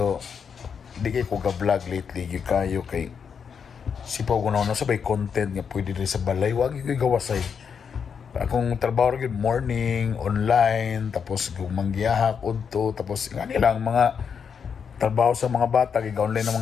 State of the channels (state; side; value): quieter; right; 6.7 dB